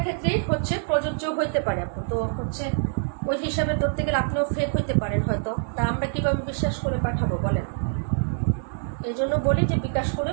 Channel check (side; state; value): left; silent; digital silence